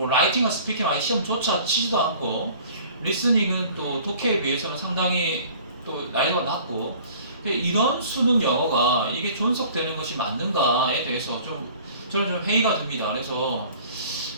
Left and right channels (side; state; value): both; inverted; correlation -0.49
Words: 라이팅과 스피킹 아예 시험조차 치지도 않고 리스닝은 또 독해에 비해서는 상당히 또 난이도가 낮고 이런 수능 영어가 이게 존속되는 것이 맞는가에 대해서 좀 저는 좀 회의가 듭니다. 그래서